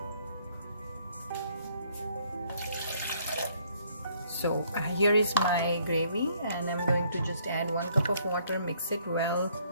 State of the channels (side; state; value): both; inverted; correlation -0.65